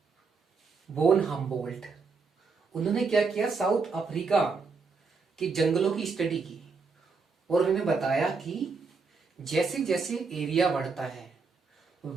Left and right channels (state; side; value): quieter; left; 4.7 dB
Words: वोन हम्बोल्ट, उन्होंने क्या किया, साउथ अफ्रीका के जंगलों की स्टडी की और उन्होंने बताया कि जैसे जैसे एरिया बढ़ता है